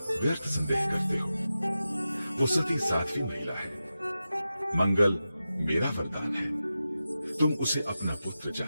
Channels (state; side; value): inverted; both; correlation -0.92